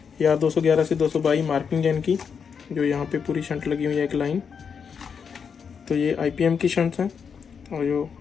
ये R211 से 222 मार्किंग है इनकी, जो यहाँ पे पूरी शंट लगी हुई है एक लाइन। तो ये आईपीएम की शंट्स हैं और जो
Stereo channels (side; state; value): right; quieter; 6.5 dB